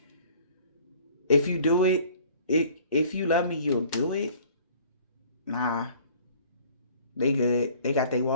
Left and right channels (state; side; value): inverted; both; correlation -0.52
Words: If you do it, if you love me, you'll do it. Nah. They good. They got their